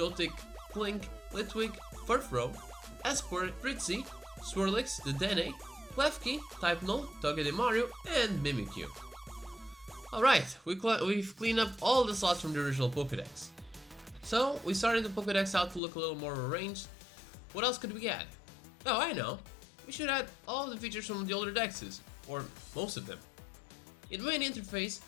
Clink, Litwick, Furfrou, Esport, Fritzy, Swirlix, Dedenne, Klefki, Typenol, Togedemaru, and Mimikyu. Alright, we've cleaned up all the slots from the original Pokédex. So, we started the Pokédex out to look a little more arranged. What else could we add? Oh, I know. We should add all the features from the older Dexes, or most of them. In the main interface,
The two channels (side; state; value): right; drops out; at 15.8 s